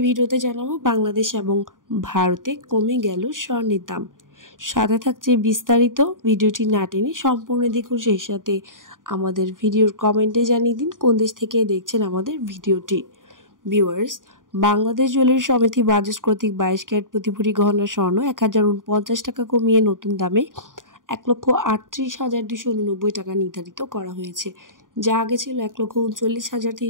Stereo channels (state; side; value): late; left; 0.89 ms